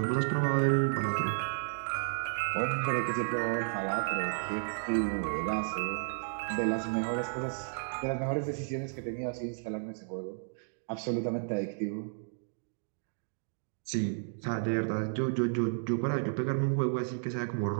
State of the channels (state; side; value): silent; left; digital silence